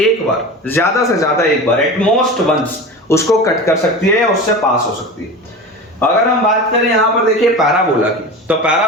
बार एट मोस्ट वंस उसको कट कर सकती है या उससे पास हो सकती है। अगर हम बात करें यहां पर देखिए पैराबोला की, तो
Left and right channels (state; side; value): normal; both; correlation 0.30